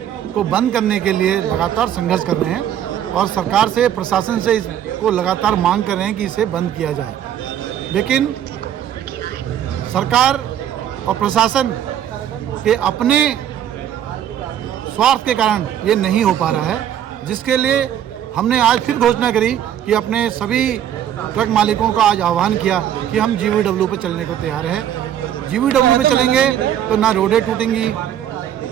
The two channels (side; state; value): left; quieter; 10.4 dB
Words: को बंद करने के लिए लगातार संघर्ष कर रहे हैं और सरकार से, प्रशासन से इसको लगातार मांग कर रहे हैं कि इसे बंद किया जाए। लेकिन सरकार और प्रशासन के अपने स्वार्थ के कारण ये नहीं हो पा रहा है, जिसके लिए हमने आज फिर घोषणा करी कि अपने सभी ट्रक मालिकों का आज आह्वान किया कि हम जीवीडब्ल्यू पे चलने को तैयार हैं। जीवीडब्ल्यू पे चलेंगे तो ना रोडें टूटेंगी